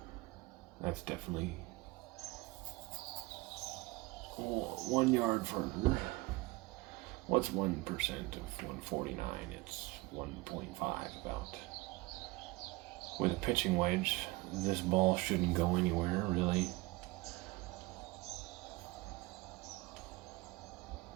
That's definitely 1 yard further. What's 1% of 149? It's 1.5 about. With a pitching wedge, this ball shouldn't go anywhere, really.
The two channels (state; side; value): quieter; left; 22.0 dB